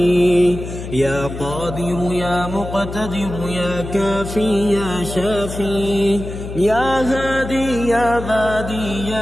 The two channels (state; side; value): noise; left; hum, 9 dB below the sound